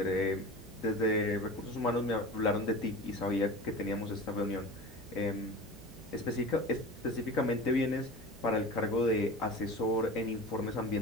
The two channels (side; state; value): both; normal; correlation 0.34